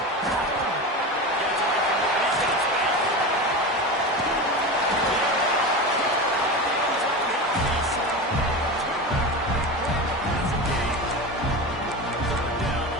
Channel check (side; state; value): both; normal; correlation 0.25